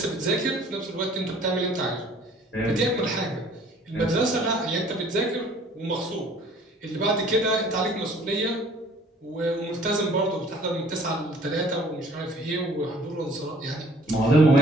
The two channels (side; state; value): both; normal; correlation 0.54